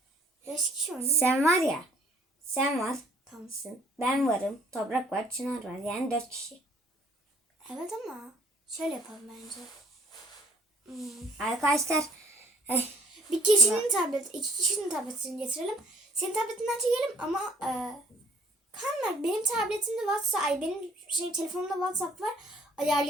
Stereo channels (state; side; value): normal; both; correlation 0.58